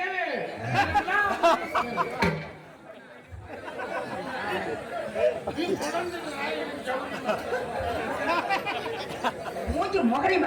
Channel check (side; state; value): both; identical; correlation 1.00